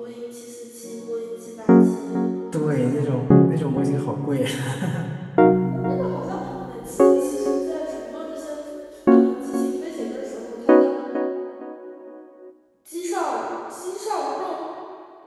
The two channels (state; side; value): identical; both; correlation 1.00